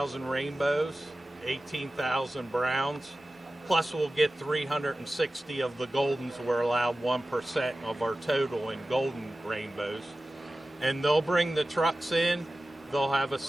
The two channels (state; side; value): normal; both; correlation 0.95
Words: rainbows, 18,000 browns, plus we'll get 360 of the goldens. We're allowed 1% of our total in golden rainbows. And they'll bring the trucks in, they'll have a